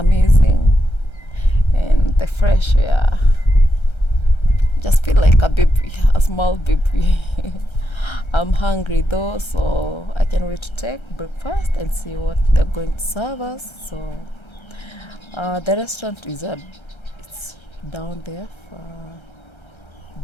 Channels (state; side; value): late; right; 1.3 ms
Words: And the fresh air. Just feel like a baby, a small baby. I'm hungry though, so I can't wait to take breakfast and see what they're going to serve us. So the restaurant it's down there,